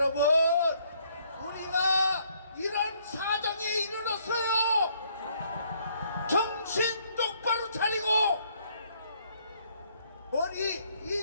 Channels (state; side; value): inverted; both; correlation -0.67